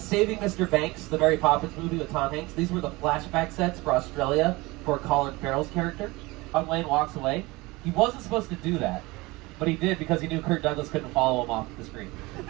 Mr. Banks, the Mary Poppins movie with Tom Hanks. These were the flashback sets for Australia for Colin Farrell's character. John Wayne walks away. He wasn't supposed to do that, but he did because he knew Kirk Douglas couldn't follow him off the screen.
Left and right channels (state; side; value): quieter; left; 22.4 dB